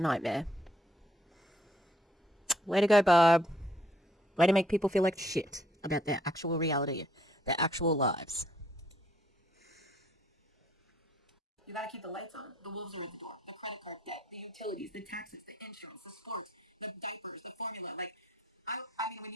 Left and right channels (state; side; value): normal; both; correlation 0.66